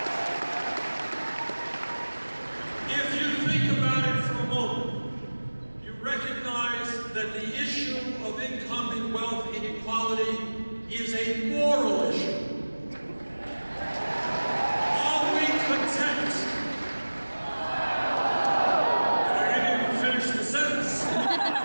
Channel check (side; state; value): both; inverted; correlation -1.00